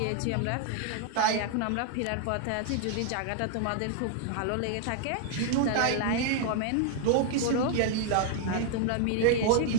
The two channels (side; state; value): both; different; correlation 0.00